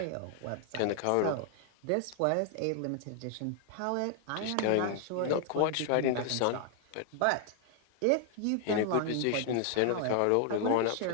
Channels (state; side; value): different; both; correlation 0.00